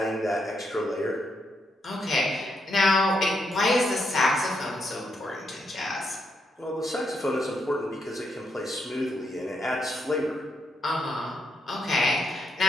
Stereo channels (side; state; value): both; normal; correlation 0.79